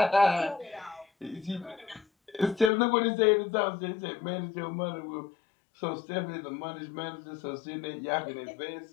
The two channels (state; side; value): drops out; right; at 2.7 s